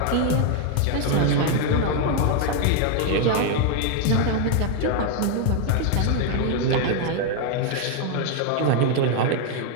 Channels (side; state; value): both; different; correlation 0.01